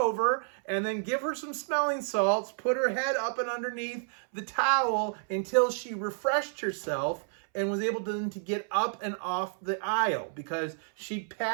and then give her some smelling salts, put her head up and underneath the towel until she refreshed herself, and was able to get up and off the aisle because she'd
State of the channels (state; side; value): silent; left; 58 dB below the other